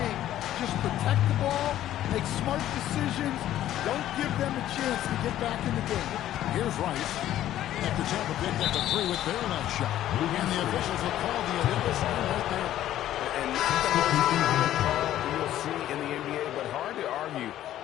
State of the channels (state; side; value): quieter; right; 12.7 dB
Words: just protect the ball, make smart decisions, don't give them a chance to get back in the game. Here's Rice. After Tampa picked up the three with their left shot. And the officials will call the illegal sign right there. And not the most common call you'll see in the NBA, but hard to argue